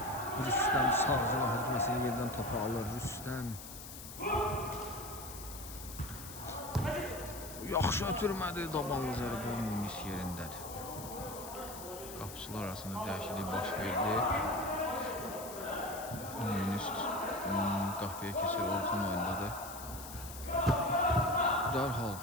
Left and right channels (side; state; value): left; noise; hiss, 12 dB below the sound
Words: Rüstəm sağcıla hücuməsini yerdən topu alır. Rüstəm. Yaxşı ötürmədi. Dabanlı zərbə Munis yerindədir. Qapıçılar arasında dəyişiklik baş verdi. Munis qapıya keçir. Orxan oyundadır. Dərhal